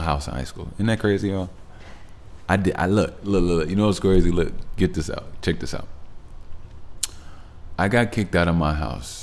high school. Isn't that crazy, y'all? I look. You know what's crazy? Look, get this out. Check this out. I got kicked out of my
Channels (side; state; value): both; identical; correlation 1.00